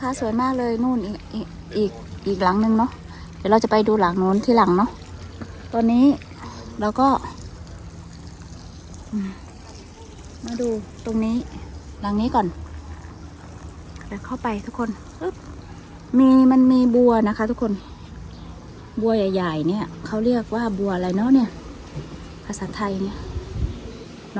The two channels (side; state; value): both; identical; correlation 1.00